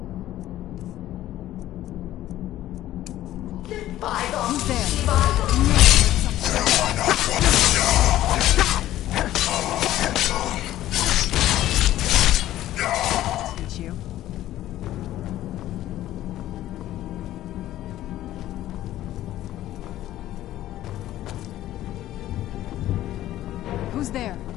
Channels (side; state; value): right; quieter; 13.9 dB